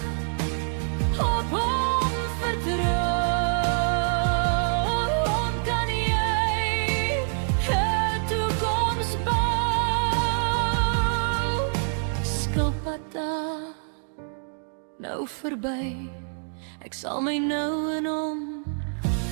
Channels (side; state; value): left; silent; 61 dB below the other